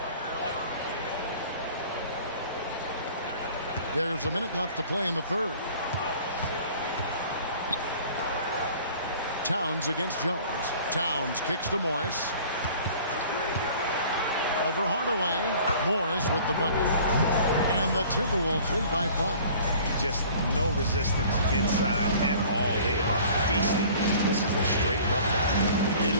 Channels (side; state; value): both; inverted; correlation -0.49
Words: There's a minute left to play in the third. Towns against Jones. Towns kicks to Morris. Over Hardaway. Morris with the bucket. And the Timberwolves lead by 5. Just no resistance inside at all. They are feasting. This is a straight buffet. It